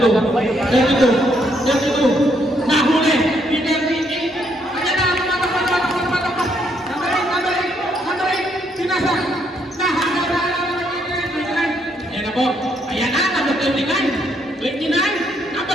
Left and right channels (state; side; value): normal; both; correlation 0.73